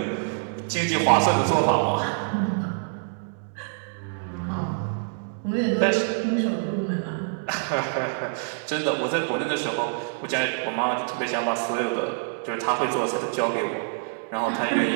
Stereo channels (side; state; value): left; silent; digital silence